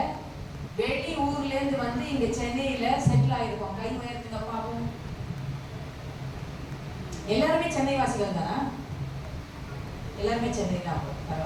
வெளி ஊர்ல இருந்து வந்து இங்க சென்னையில செட்டில் ஆயிருக்கோம்? கை உயர்த்துங்க பாப்போம். எல்லாருமே சென்னை வாசிகள் தானா? எல்லாருமே சென்னை தான்.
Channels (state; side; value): identical; both; correlation 1.00